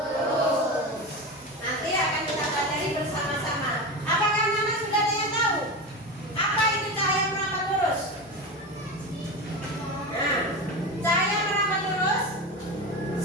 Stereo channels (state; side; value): normal; both; correlation 0.23